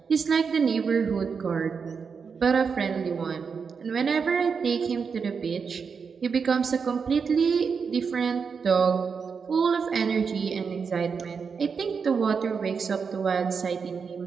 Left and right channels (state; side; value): quieter; left; 5.8 dB